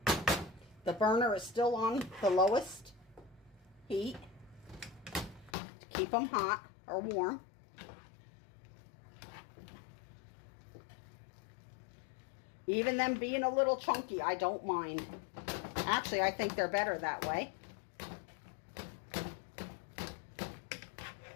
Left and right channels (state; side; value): drops out; right; at 5.6 s